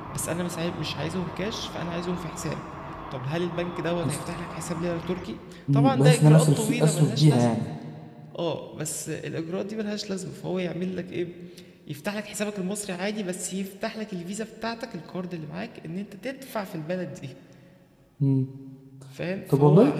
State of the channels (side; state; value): both; identical; correlation 1.00